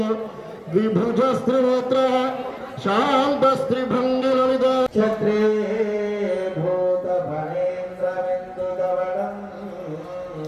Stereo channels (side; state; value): both; identical; correlation 1.00